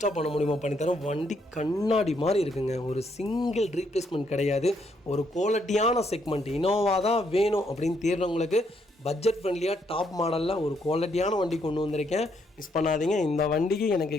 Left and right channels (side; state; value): both; normal; correlation 0.73